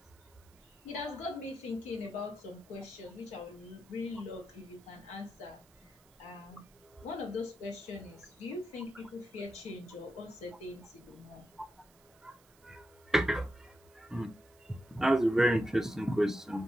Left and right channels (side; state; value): right; noise; hiss, 28 dB below the sound